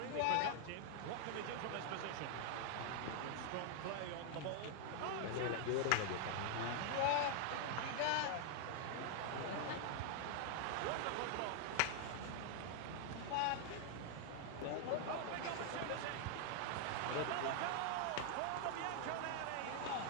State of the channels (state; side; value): different; both; correlation 0.00